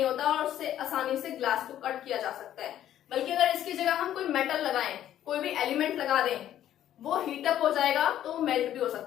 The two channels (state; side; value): quieter; right; 11.6 dB